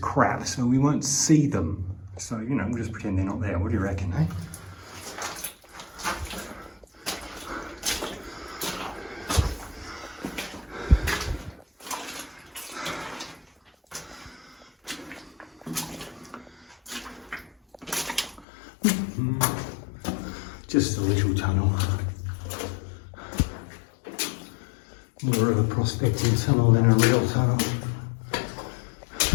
so we won't see them. So, you know, we'll just pretend they're not there. What do you reckon, eh? Just a little tunnel. More of a prospecting tunnel than a real tunnel.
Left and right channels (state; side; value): drops out; right; at 18.4 s